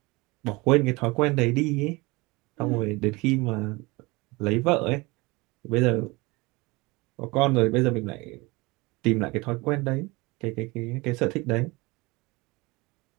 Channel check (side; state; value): left; quieter; 24.2 dB